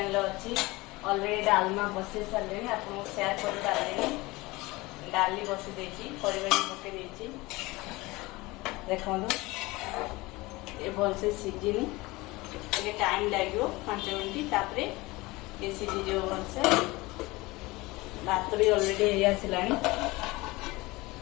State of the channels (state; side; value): quieter; right; 21.7 dB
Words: अच्छी अलरेडी डालमा बसई सारे आपको सेयार कर पारे डाली बसी देती परिवार पकई देखो ये भलसे सीझिनी ये टाइम लगे 5 मिनट तापर ये सीझी भलसे भात भी अलरेडी हो आसला